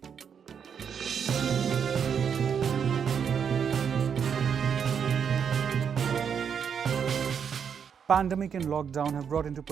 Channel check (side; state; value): left; quieter; 7.3 dB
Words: Pandemic and lockdown have brought into